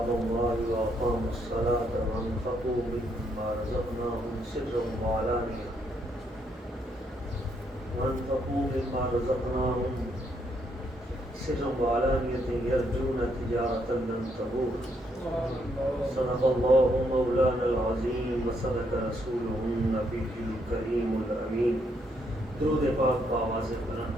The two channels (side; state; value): both; normal; correlation 0.74